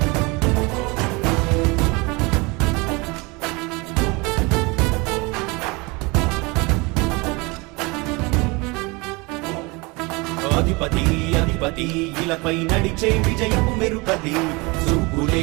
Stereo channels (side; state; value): left; quieter; 26.3 dB